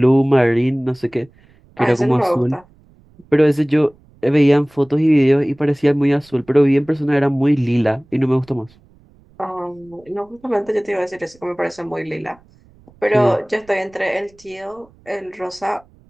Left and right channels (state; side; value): noise; right; rumble, 29 dB below the sound